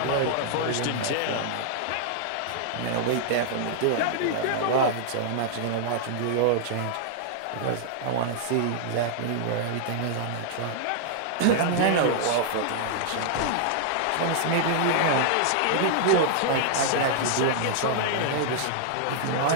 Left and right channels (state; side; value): different; both; correlation -0.01